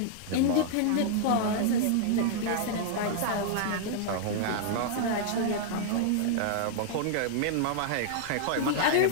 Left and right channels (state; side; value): different; both; correlation -0.01